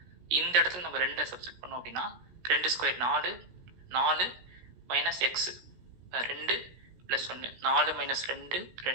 இந்த இடத்துல நம்ம 2 சப்ஸ்டிட் பண்ணோம் அப்படின்னா 2² 4, 4 minus X 2 plus 1, 4 minus 2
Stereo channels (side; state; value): left; late; 17 ms